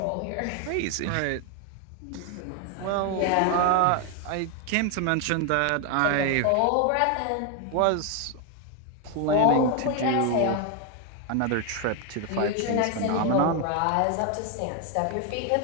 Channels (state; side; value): different; both; correlation 0.01